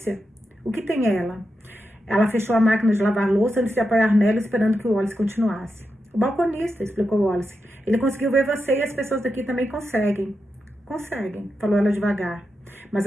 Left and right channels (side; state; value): both; normal; correlation 0.88